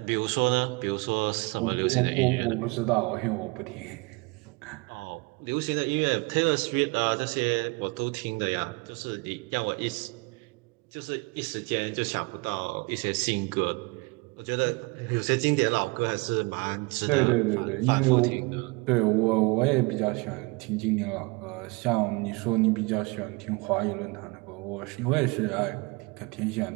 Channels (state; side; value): quieter; left; 26.9 dB